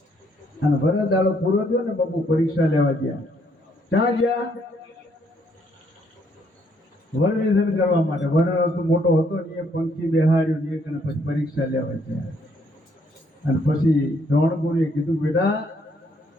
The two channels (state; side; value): normal; both; correlation 0.69